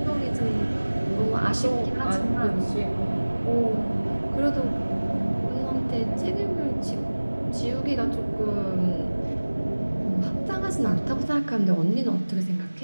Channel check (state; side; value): inverted; both; correlation -1.00